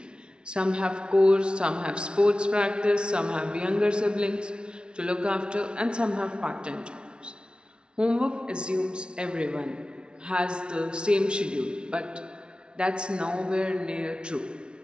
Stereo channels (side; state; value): left; late; 0.056 ms